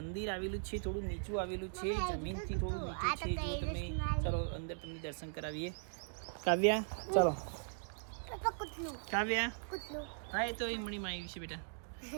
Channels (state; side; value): silent; left; digital silence